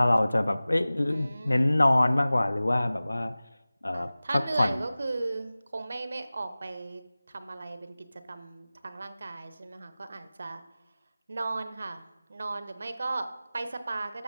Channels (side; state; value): both; inverted; correlation -0.98